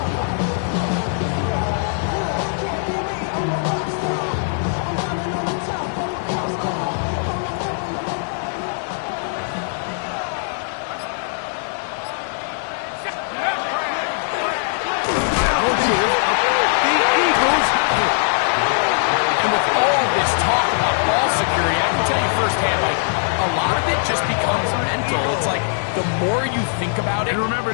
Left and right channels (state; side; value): silent; right; digital silence